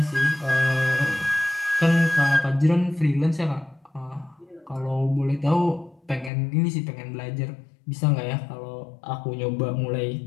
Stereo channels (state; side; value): drops out; right; at 6.3 s